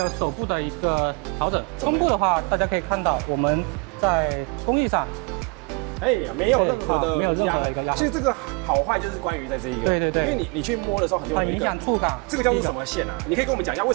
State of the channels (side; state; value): left; quieter; 32.2 dB